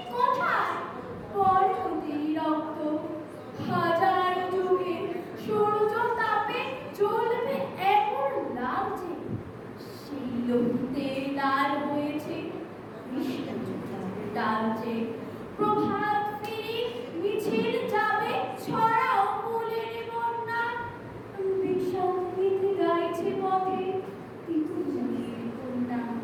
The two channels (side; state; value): both; identical; correlation 1.00